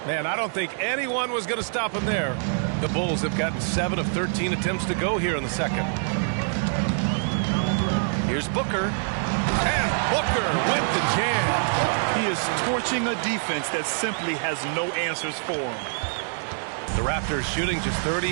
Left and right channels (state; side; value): silent; left; digital silence